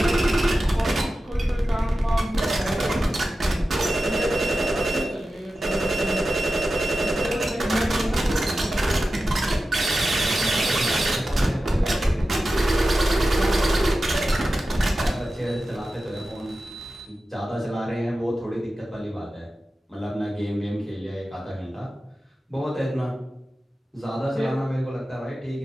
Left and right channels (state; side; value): normal; both; correlation 0.93